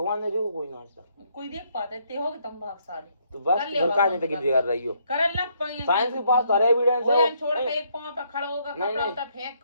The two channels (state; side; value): inverted; both; correlation -0.71